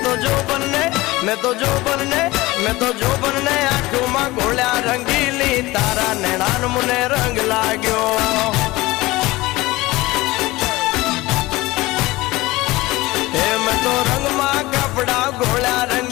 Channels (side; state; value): right; quieter; 20.0 dB